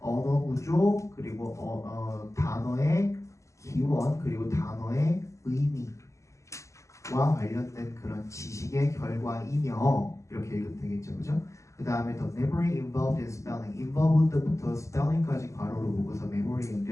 구조 그리고 단어의 기원 그리고 단어의 의미와 관련된 그런 지식의 결과이며 이렇게 읽으면 되겠죠, 그죠? 그 다음에 the memory involved in spelling, involved부터 spelling까지 괄호로 묶어서 memory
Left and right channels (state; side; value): late; right; 0.15 ms